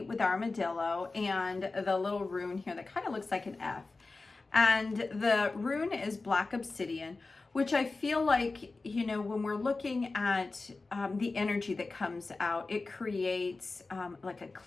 with armadillo and the little rune here that kind of looks like an F. And the rune is black obsidian, which I feel like, you know, when we're looking at the energy that comes out, it creates like a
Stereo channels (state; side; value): quieter; right; 3.6 dB